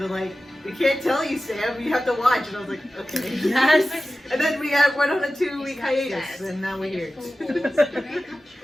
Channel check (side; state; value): both; normal; correlation 0.95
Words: were like, we can't tell you, Sam. You have to watch. And I was like, okay. Yes. And then we went on a 2-week hiatus, and now we're here.